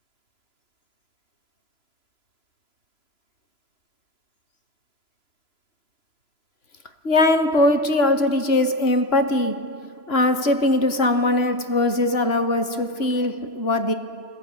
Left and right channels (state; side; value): late; right; 3.0 ms